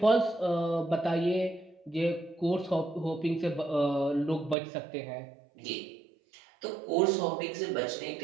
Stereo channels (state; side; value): drops out; left; at 4.5 s